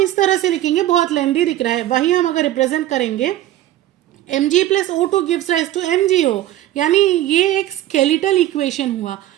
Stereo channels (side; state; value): left; quieter; 13.9 dB